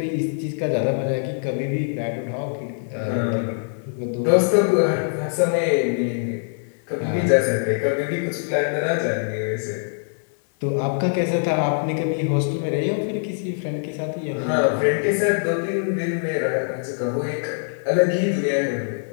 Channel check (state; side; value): silent; right; digital silence